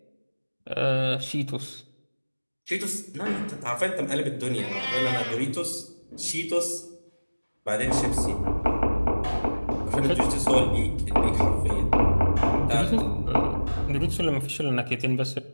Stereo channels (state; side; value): inverted; both; correlation -1.00